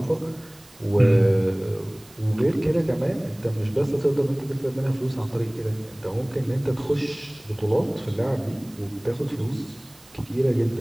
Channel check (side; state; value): right; noise; hiss, 25 dB below the sound